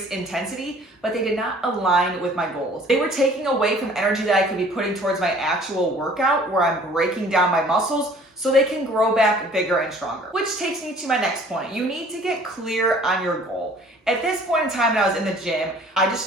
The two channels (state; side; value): normal; both; correlation 0.52